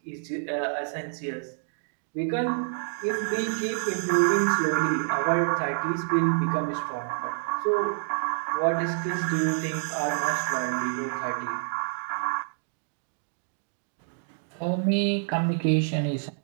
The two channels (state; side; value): silent; left; digital silence